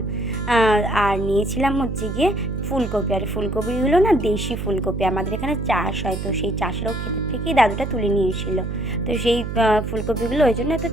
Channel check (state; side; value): noise; right; hum, 5 dB below the sound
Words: আর নিয়েছিলাম হচ্ছে গিয়ে ফুলকপি। আর ফুলকপিগুলো না দেশি ফুলকপি, আমাদের এখানে চাষ হয়, তো সেই চাষেরও ক্ষেত্র থেকেই দাদুটা তুলে নিয়েছিল। তো সেই ফুলকপিগুলো ওই জন্য এত